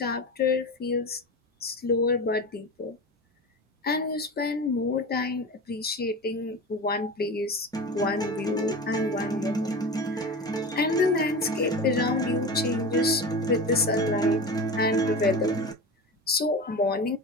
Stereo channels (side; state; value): both; normal; correlation 0.29